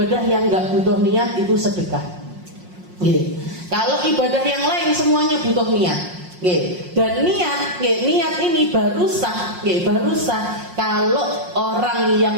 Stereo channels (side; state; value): left; late; 5.6 ms